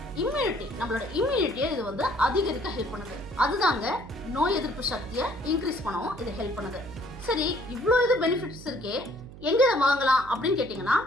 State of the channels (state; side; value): noise; right; hum, 16 dB below the sound